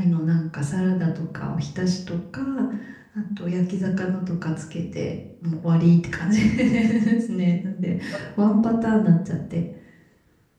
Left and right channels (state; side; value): identical; both; correlation 1.00